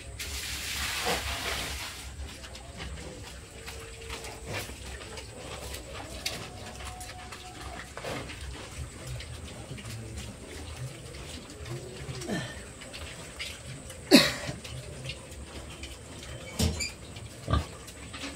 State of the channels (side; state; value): both; identical; correlation 1.00